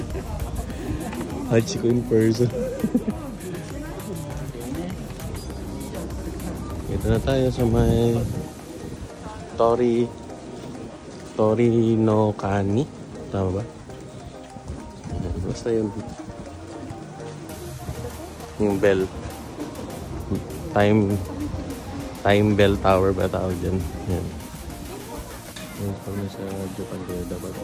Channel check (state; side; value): identical; both; correlation 1.00